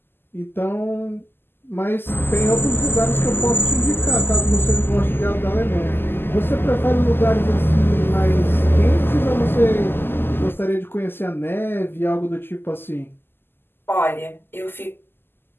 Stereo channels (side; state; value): right; late; 0.10 ms